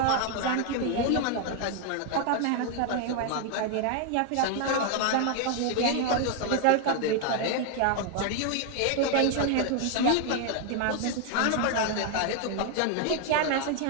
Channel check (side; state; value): both; different; correlation 0.00